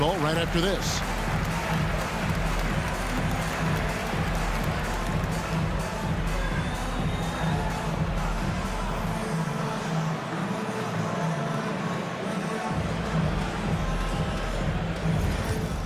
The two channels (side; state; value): both; identical; correlation 1.00